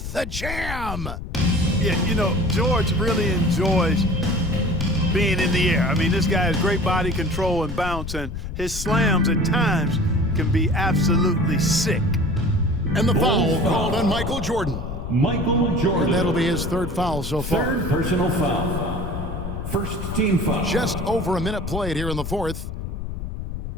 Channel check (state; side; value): noise; left; rumble, 7 dB below the sound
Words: the jam. Yeah, you know, George really enjoys being in the air. I mean, this guy has great body control and bounce, and his slams at times can be absolutely sick. And the foul called on Michael Jordan. Michael Jordan. And that'll be his third foul so far. Third personal foul. First team foul. Just over a minute played here in the fourth.